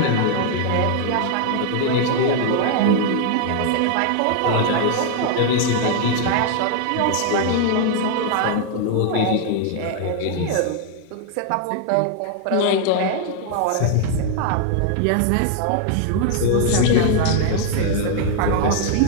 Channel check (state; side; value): different; both; correlation 0.00